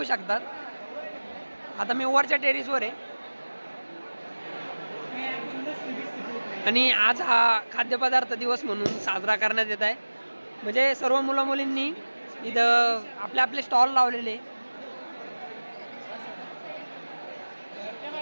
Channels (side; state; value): both; inverted; correlation -1.00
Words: शकतात। आता मी वरच्या टेरेसवर आहे आणि आज हा खाद्यपदार्थ दिवस म्हणून साजरा करण्यात येत आहे। म्हणजे सर्व मुलं मुलींनी इथं आपले आपले स्टॉल लावलेले।